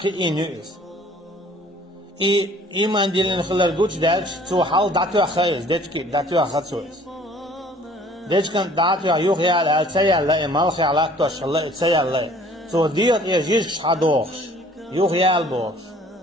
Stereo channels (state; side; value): normal; both; correlation 0.54